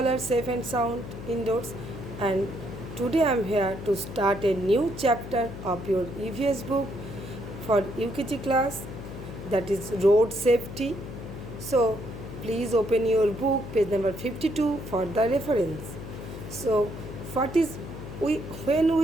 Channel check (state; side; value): noise; left; hum, 10 dB below the sound